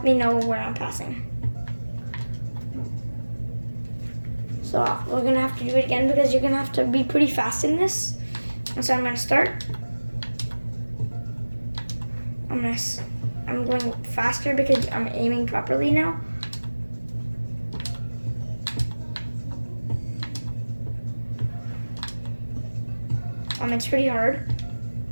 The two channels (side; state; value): both; inverted; correlation -1.00